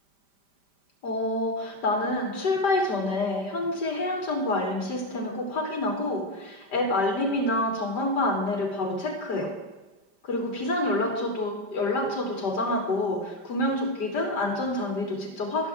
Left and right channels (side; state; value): right; late; 5.1 ms